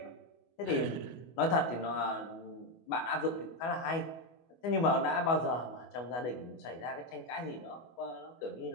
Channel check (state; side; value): late; right; 25 ms